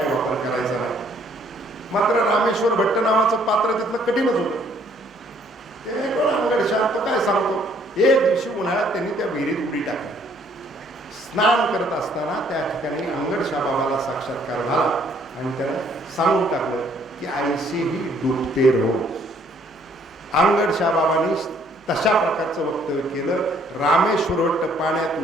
वापर करायचा नाही. मात्र रामेश्वर भट्ट नावाचं पात्र तिथलं कठीणच होतं. ते अंगडशाह तो काय सांगतो, एक दिवशी उन्हाळ्यात त्यांनी त्या विहिरीत उडी टाकली. स्नान करत असताना त्या ठिकाणी अंगडशाह बाबाला साक्षात्कार झाला आणि त्याला सांगून टाकलं की ऐसे ही डुबते रहो. अंगडशाह बाबांनी तशा प्रकारचं वक्तव्य केलं. रामेश्वर भट्ट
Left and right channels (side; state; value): both; normal; correlation 0.64